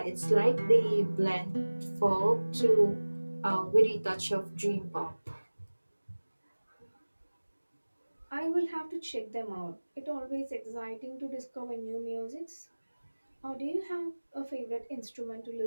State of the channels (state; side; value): inverted; both; correlation -1.00